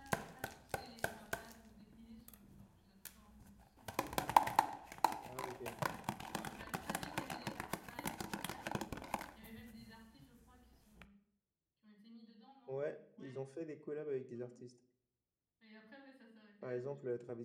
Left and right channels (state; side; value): identical; both; correlation 1.00